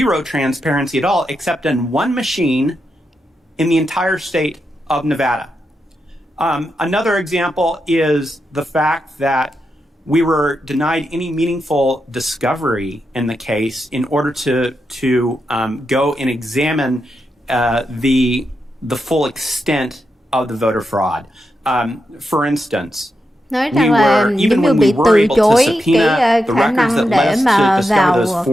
transparency at all, except in one machine in the entire state of Nevada. Another example is the fact that we were denied any meaningful discovery in the case in order to go and examine the full extent of the voter fraud. For instance, nói rằng là giống như bị từ chối cái khả năng để mà vào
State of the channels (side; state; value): both; normal; correlation 0.86